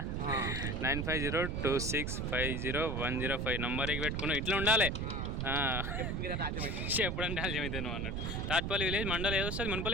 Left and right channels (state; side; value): noise; right; rumble, 1 dB below the sound